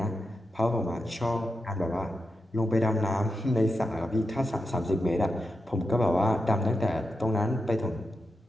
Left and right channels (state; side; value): normal; both; correlation 0.87